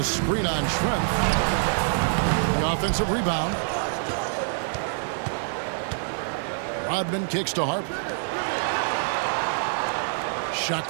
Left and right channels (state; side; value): silent; left; digital silence